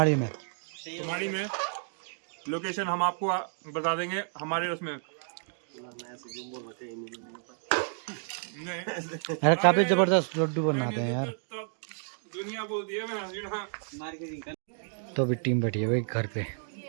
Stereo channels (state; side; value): silent; left; 57 dB below the other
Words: में। कुमारी में लोकेशन हम आपको बता देंगे हमारे उसमें। नहीं, अरे काफी जबरदस्त लड्डू बनाते हैं यार। तो दुनिया बोलती है मैं। तो अभी टीम बैठी है भाई घर पे,